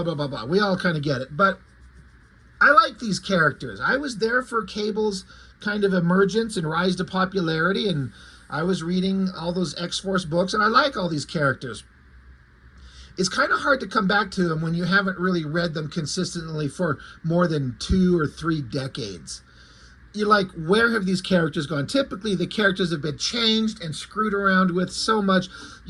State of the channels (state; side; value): identical; both; correlation 1.00